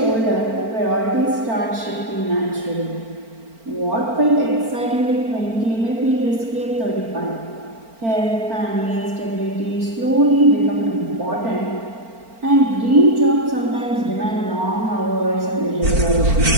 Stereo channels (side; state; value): left; late; 4.4 ms